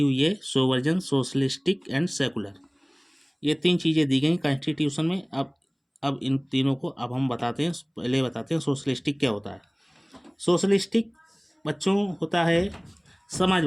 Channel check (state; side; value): identical; both; correlation 1.00